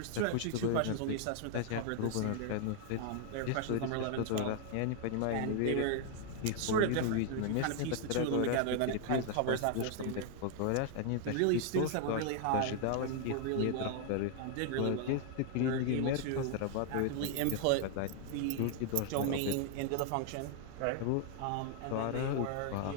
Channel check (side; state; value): both; different; correlation 0.00